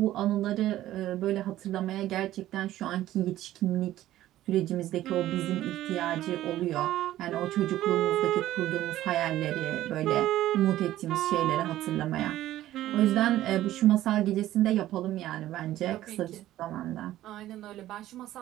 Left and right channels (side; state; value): left; quieter; 14.1 dB